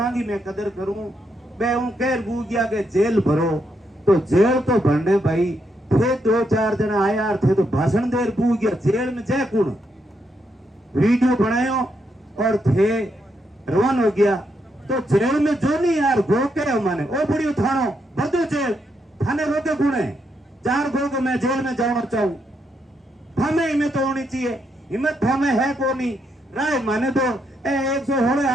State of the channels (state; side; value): normal; both; correlation 0.79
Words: की मैं कदर करूं, मैं हूं कह बू गया के जेल भरो, तो जेल तो भरने भाई थे 2-4 जना आया थे तो भाषण देर बू गया, जेल में जय कुण वीडियो बनायो और थे रवान हो गया। तो जेल में जो नहीं यार गो के माने ओ बुढ़ी थानो बदो जेल थाने रोके गुणे 4 गो के मैं जेल में जाना चाहूं, थामे हिम्मत तो होनी चाहिए, हिम्मत थामे है को नहीं राय माने तो 116